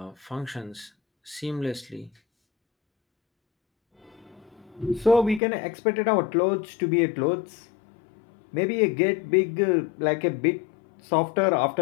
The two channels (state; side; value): drops out; right; at 5.4 s